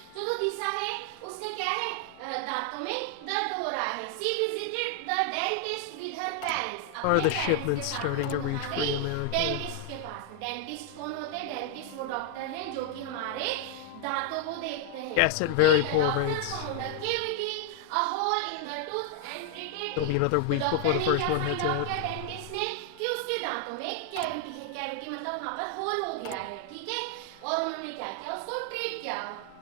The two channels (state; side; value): different; both; correlation 0.00